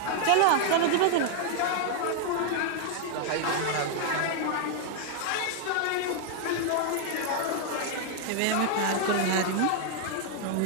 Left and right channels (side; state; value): both; different; correlation 0.00